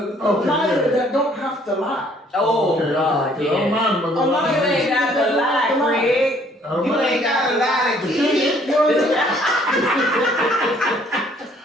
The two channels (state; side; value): normal; both; correlation 0.61